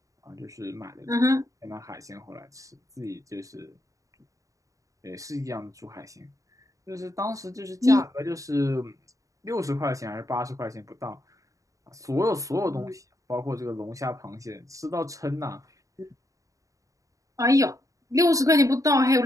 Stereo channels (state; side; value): late; left; 0.16 ms